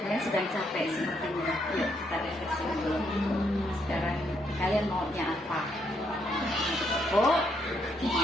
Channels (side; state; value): both; normal; correlation 0.75